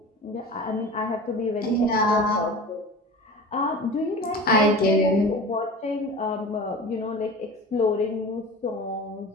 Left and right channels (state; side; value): normal; both; correlation 0.36